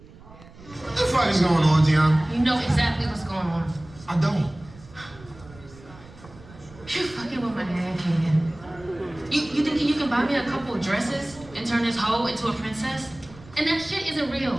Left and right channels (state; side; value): noise; right; rumble, 21 dB below the sound